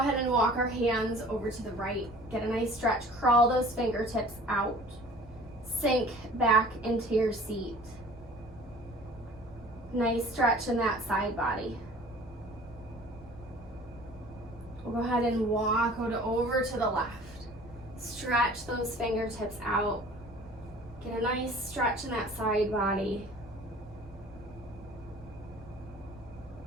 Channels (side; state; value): both; normal; correlation 0.47